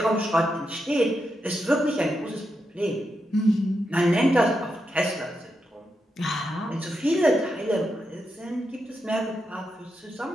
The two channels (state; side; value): normal; both; correlation 0.85